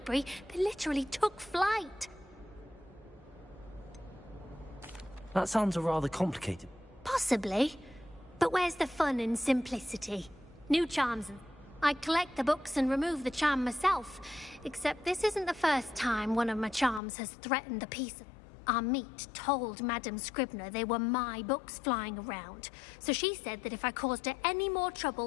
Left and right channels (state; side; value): drops out; right; at 17.0 s